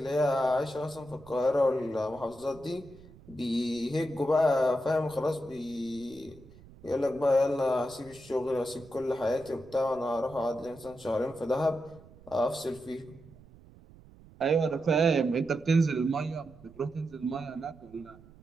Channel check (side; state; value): right; noise; rumble, 22 dB below the sound